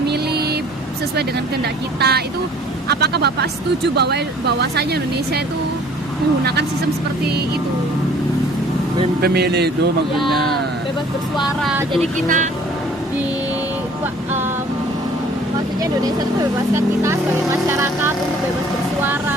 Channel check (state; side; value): normal; both; correlation 0.53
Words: sesuai dengan kehendak kita. Itu apakah Bapak setuju bahwasanya Indonesia itu menggunakan sistem seperti itu? Pemilih itu maksudnya. Ya, bebas bersuara. Jadi kita maksudnya Indonesia itu membebaskan kita sebagai masyarakat untuk bebas